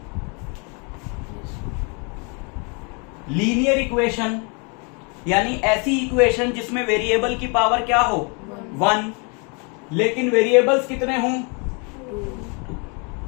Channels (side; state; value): right; quieter; 34.4 dB